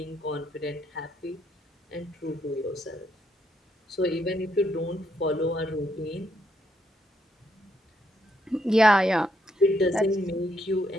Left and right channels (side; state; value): both; normal; correlation 0.75